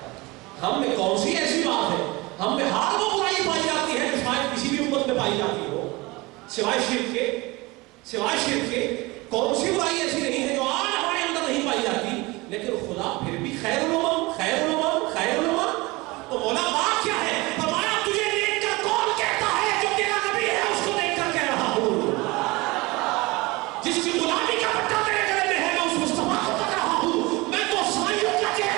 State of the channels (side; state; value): left; quieter; 23.0 dB